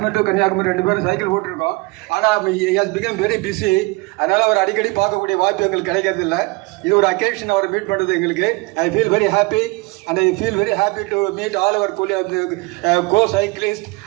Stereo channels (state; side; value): quieter; left; 25.4 dB